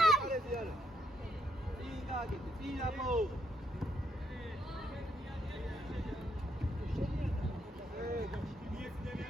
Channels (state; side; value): normal; both; correlation 0.75